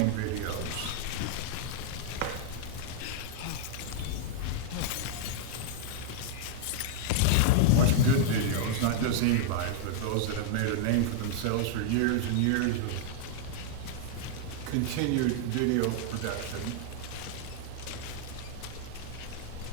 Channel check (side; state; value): both; different; correlation -0.01